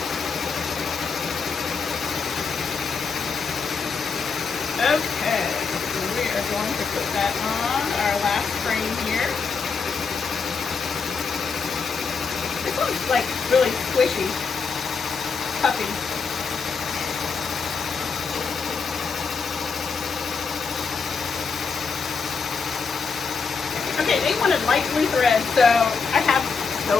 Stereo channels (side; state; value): right; quieter; 5.2 dB